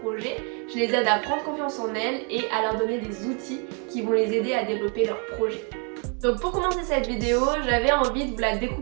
Je les aide à prendre confiance en elles et à leur donner des outils qui vont les aider à développer leurs projets. Donc pour commencer cette vidéo, j'avais envie de vous la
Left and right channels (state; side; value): quieter; left; 37.6 dB